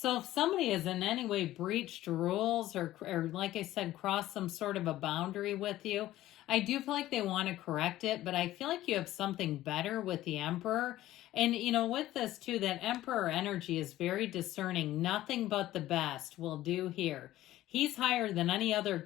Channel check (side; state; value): right; quieter; 14.9 dB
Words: if somebody has in any way breached rules or like I said, crossed some sort of a boundary with you, I do feel like they want to correct it, but I feel like you have something better with the Emperor. And, you know, with this too, that Emperor energy is very discerning. Nothing but the best will do here. He's higher than any